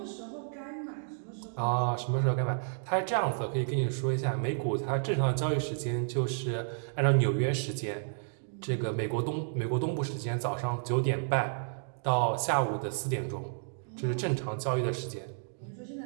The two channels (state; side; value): silent; left; digital silence